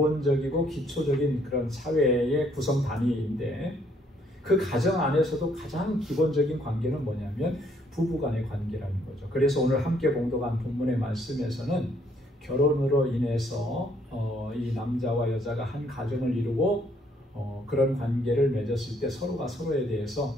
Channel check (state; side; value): normal; both; correlation 0.67